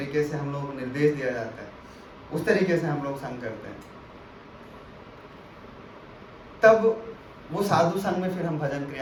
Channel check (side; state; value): both; identical; correlation 1.00